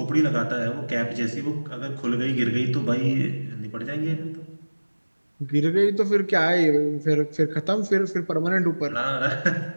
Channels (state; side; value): inverted; both; correlation -1.00